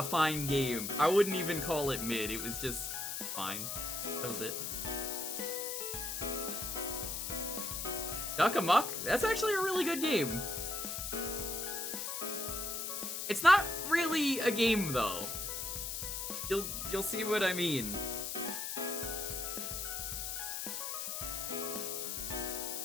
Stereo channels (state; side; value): noise; left; hiss, 3 dB below the sound